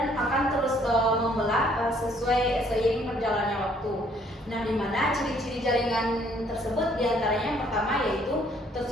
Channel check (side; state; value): both; normal; correlation 0.63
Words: akan terus membelah sesuai seiring berjalannya waktu. Nah, di mana ciri-ciri jaringan tersebut diantaranya yang pertama yaitu